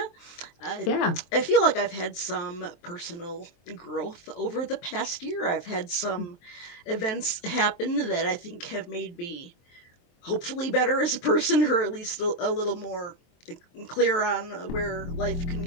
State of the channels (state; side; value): late; right; 23 ms